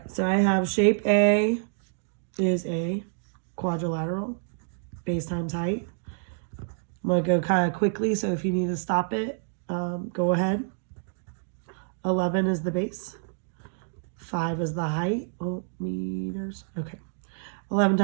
so I have shape A is a quadrilateral, base times height. I'm going to go kind of quickly, so if you need to stop it, go ahead. 11 is the base. 5 is the height. Oh, meters. Okay. 11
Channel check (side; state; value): left; silent; digital silence